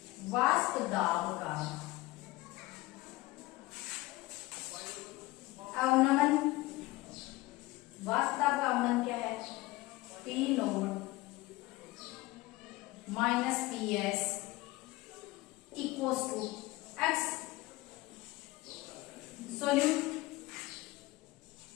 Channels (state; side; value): quieter; right; 19.8 dB